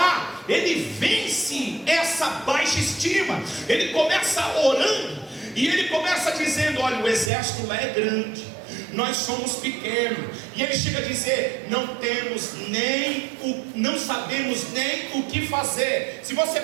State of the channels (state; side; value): drops out; left; at 7.3 s